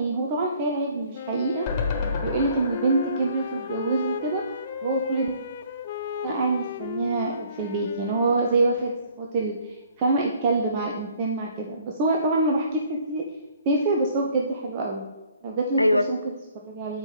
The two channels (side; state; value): both; inverted; correlation -0.59